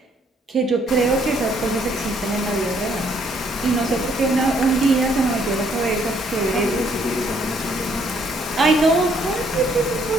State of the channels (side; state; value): both; normal; correlation 0.67